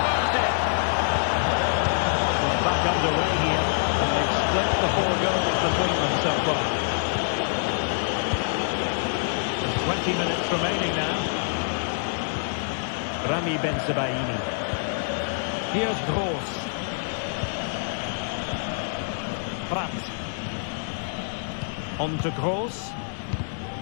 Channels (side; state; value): right; silent; digital silence